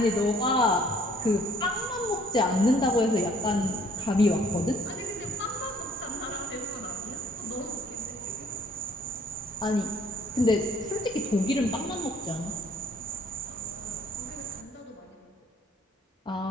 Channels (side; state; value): both; normal; correlation 0.59